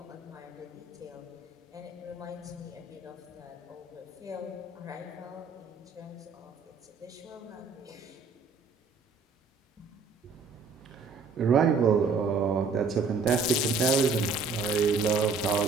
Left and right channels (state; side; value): quieter; left; 4.4 dB